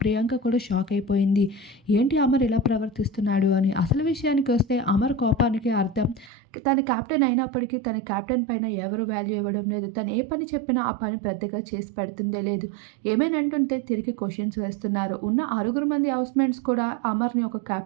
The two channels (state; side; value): drops out; left; at 6.3 s